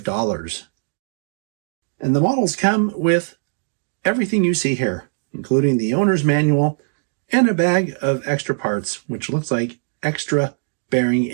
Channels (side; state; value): left; silent; digital silence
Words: And the models come with everything you see here, including the owner's manual and a bag of extra parts, which looks like extra bearing